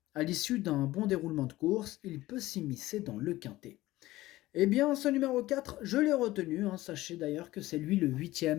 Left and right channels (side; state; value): right; quieter; 17.3 dB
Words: À l'issue d'un bon déroulement de course, il peut s'immiscer dans le quintet. Eh bien, ce numéro 4, je l'ai retenu. Sachez d'ailleurs que c'est lui le